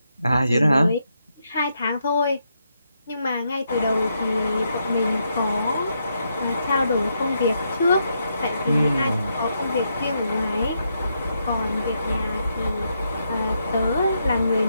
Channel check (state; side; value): inverted; both; correlation -0.80